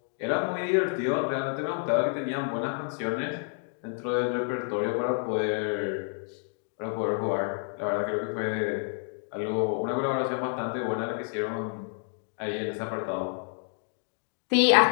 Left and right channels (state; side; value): silent; right; 55 dB below the other